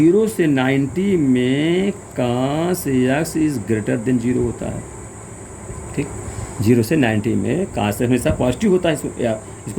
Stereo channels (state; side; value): identical; both; correlation 1.00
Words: से 90 में कास एक्स इज ग्रेटर देन 0 होता है, ठीक। 0 से 90 में कास हमेशा पॉजिटिव होता है,